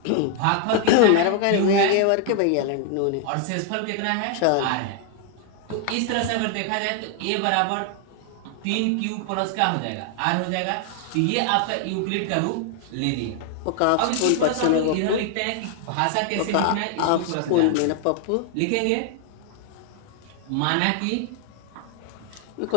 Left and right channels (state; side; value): different; both; correlation 0.00